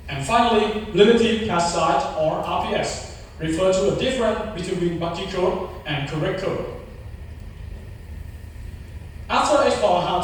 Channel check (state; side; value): identical; both; correlation 1.00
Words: And finally, relative pass size or RPS refers to the difference between buggy code and correct code. After exploring how